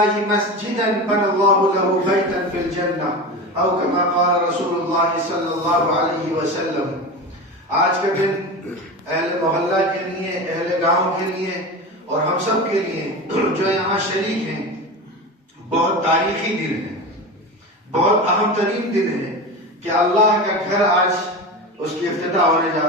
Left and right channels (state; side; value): normal; both; correlation 0.26